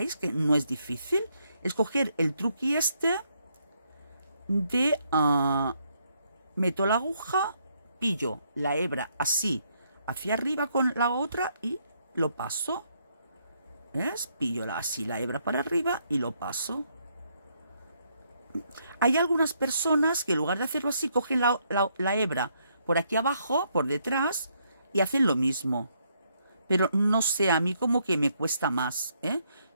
que no es difícil? Es coger el truqui este de meto la aguja, pillo la hebra así hacia arriba con la otra y lo paso. ¿Ves? Pillo así la hebra para arriba y lo paso. Hay algunas personas que en lugar de hacerlo así cogen la hebra por aquí abajo, por detrás, y hacen lo mismo. Pero no sé, a mí como que me cuesta más,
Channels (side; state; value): both; inverted; correlation -0.74